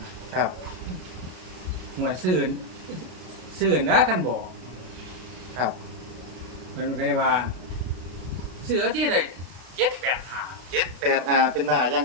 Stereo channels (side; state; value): left; late; 32 ms